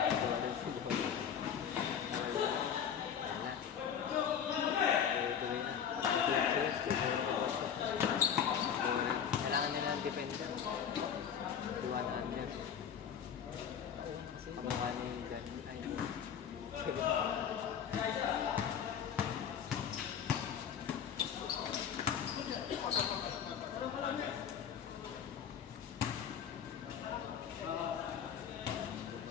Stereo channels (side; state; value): right; quieter; 8.1 dB